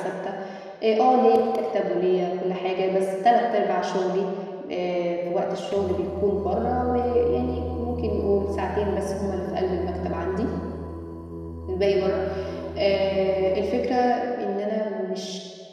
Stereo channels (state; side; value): identical; both; correlation 1.00